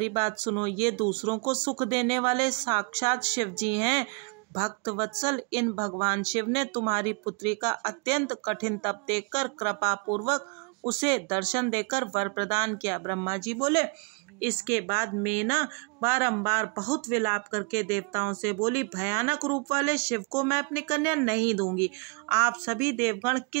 बात सुनो। ये दूसरों को सुख देने वाले साक्षात शिव जी हैं। भक्त वत्सल, इन भगवान शिव ने तुम्हारी पुत्री का अत्यंत कठिन तप देखकर कृपा पूर्वक उसे दर्शन देकर वर प्रदान किया। ब्रह्मा जी बोले, इसके बाद मेना बारंबार बहुत विलाप करके देवताओं से बोली, भयानक रूप वाले शिव को मैं अपनी कन्या नहीं दूंगी। आप सभी देवगण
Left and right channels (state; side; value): quieter; left; 34.0 dB